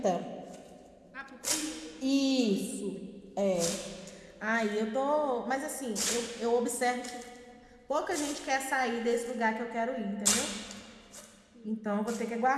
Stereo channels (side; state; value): both; identical; correlation 1.00